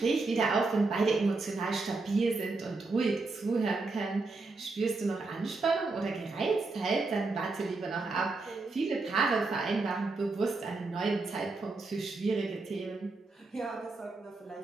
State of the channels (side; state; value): left; quieter; 3.6 dB